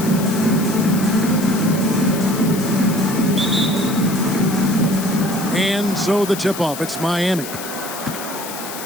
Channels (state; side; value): noise; left; hiss, 10 dB below the sound